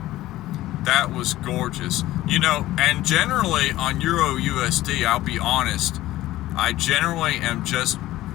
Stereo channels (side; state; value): right; quieter; 15.8 dB